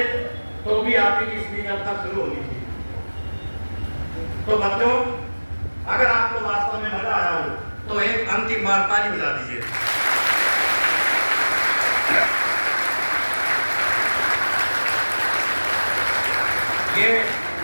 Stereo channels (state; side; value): inverted; both; correlation -1.00